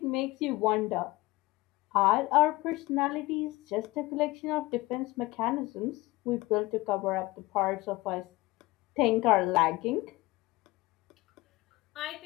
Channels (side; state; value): right; quieter; 20.1 dB